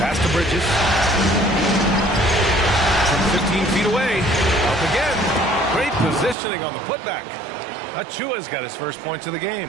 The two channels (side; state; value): left; drops out; at 6.4 s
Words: Pass to Bridges. From 15 feet away. Up again. Great positioning on the putback. Achua's got his first points of the game.